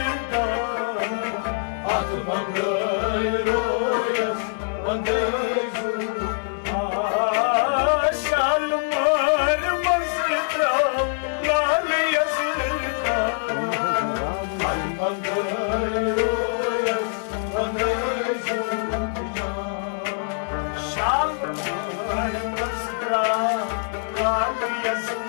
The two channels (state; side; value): silent; right; digital silence